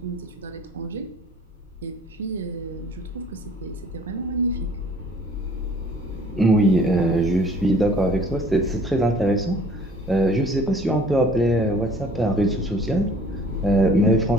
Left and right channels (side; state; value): both; normal; correlation 0.53